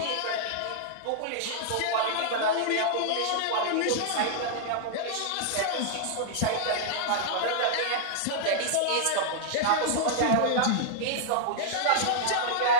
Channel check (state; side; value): different; both; correlation -0.01